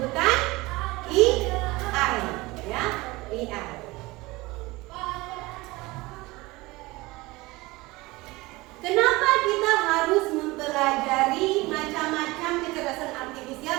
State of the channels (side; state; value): left; quieter; 21.5 dB